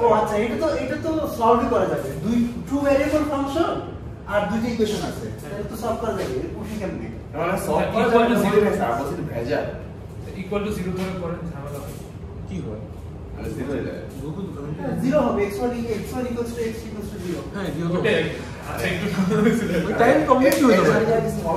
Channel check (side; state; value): both; identical; correlation 1.00